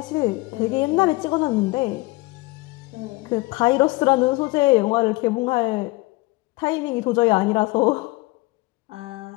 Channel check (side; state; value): right; quieter; 22.4 dB